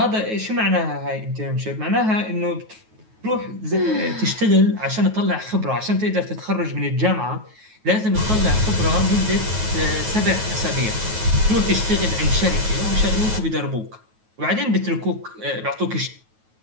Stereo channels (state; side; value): late; left; 9.3 ms